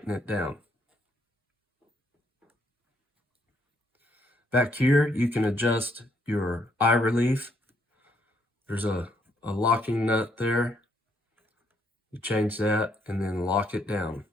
it down. Back here, you can adjust your eye relief. There's a locking nut there. You change that and then lock it down.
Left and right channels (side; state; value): both; normal; correlation 0.71